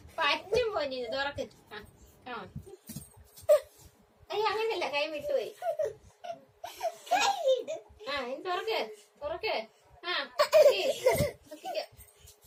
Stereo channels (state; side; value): identical; both; correlation 1.00